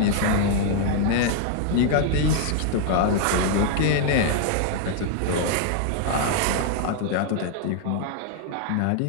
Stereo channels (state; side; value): different; both; correlation 0.00